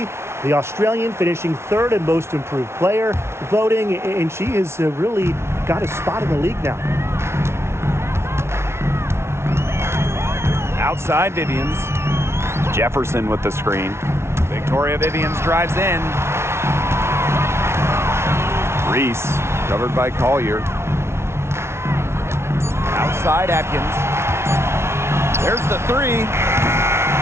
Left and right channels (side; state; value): left; late; 0.13 ms